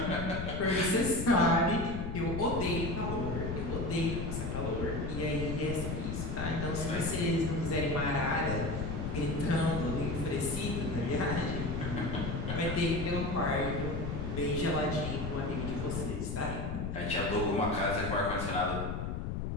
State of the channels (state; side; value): noise; left; rumble, 3 dB below the sound